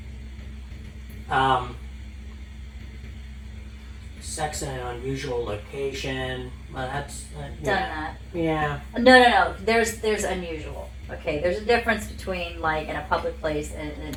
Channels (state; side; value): identical; both; correlation 1.00